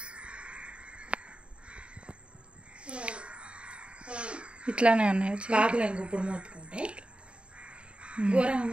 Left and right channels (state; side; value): late; left; 0.057 ms